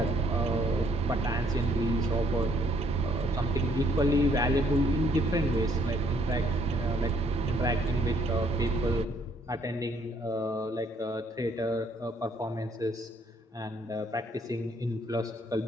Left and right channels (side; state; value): both; normal; correlation 0.67